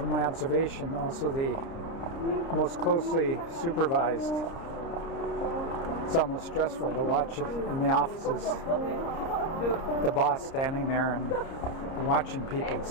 my observation, also the most closely supervised. It's almost stressful to watch in the offices. The boss standing there and watching people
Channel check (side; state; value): right; late; 30 ms